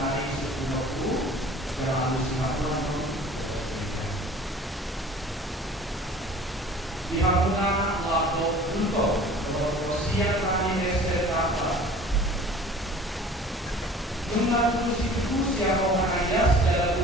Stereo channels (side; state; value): both; normal; correlation 0.46